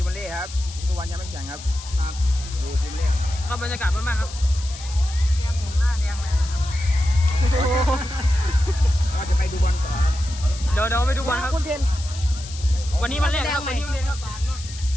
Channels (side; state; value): left; noise; hiss, 14 dB below the sound